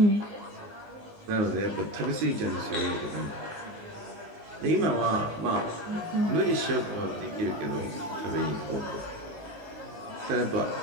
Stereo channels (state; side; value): late; left; 19 ms